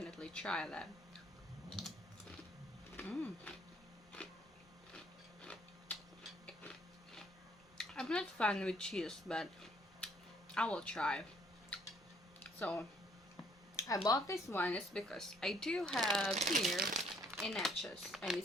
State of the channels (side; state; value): both; normal; correlation 0.63